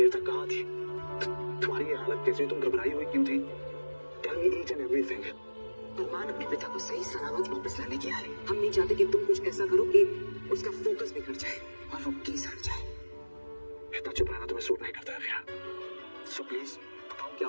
तक कहाँ थी? तुम्हारी ये हालत कैसी? तुम घबराई हुई क्यों थी? Tell me each and everything. अरमान अपने पिता को सही सलामत वापस लाने के आए। हम नहीं चाहते कि तुम कुछ ऐसा करो कि उसका फोकस बिगड़ जाए और वो केस हट जाए। इतना चुप रहना तुम्हें सूट नहीं करता है फिर। सो प्लीज बताओ क्या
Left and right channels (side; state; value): both; inverted; correlation -1.00